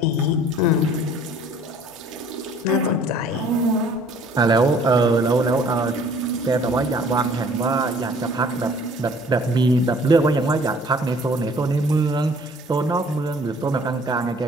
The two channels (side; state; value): both; normal; correlation 0.55